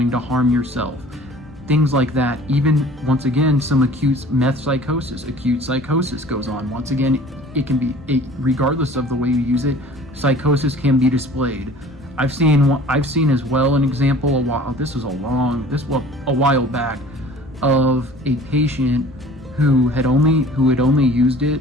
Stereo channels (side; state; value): both; normal; correlation 0.47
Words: to harm yourself, things like that. Even, once again, some acute meth psychosis. Acute psychosis goes on. Once again, it can be, regardless of the way you use it, psychosis can be displayed. I've seen as well an example a while back of a patient who had only used